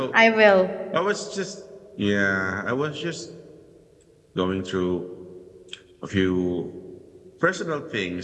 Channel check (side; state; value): both; identical; correlation 1.00